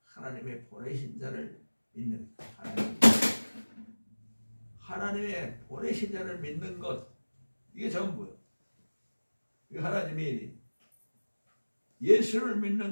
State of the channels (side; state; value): both; inverted; correlation -1.00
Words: 하나님의 보내신 자를 믿는 하나님의 보내신 자를 믿는 것, 이게 전부예요. 이게 하나님의 일이. 예수를